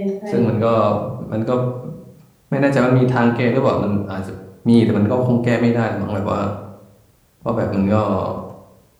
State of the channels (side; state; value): both; identical; correlation 1.00